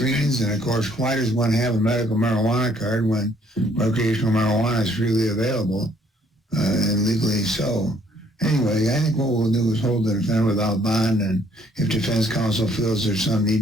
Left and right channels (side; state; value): both; normal; correlation 0.64